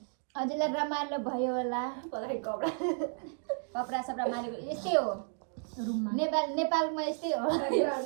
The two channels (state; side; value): silent; left; 56 dB below the other